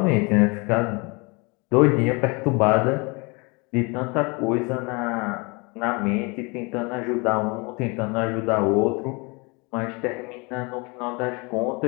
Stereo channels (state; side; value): quieter; right; 29.0 dB